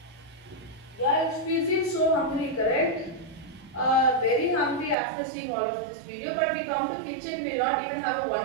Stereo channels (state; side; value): drops out; left; at 5.0 s